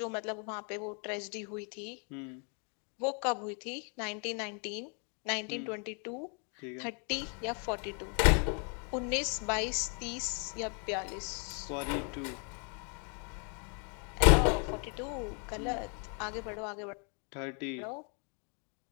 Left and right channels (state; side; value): quieter; right; 38.5 dB